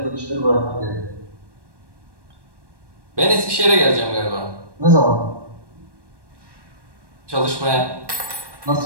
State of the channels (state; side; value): late; left; 1.1 ms